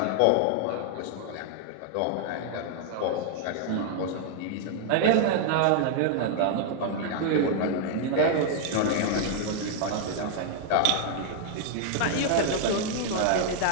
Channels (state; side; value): different; both; correlation 0.00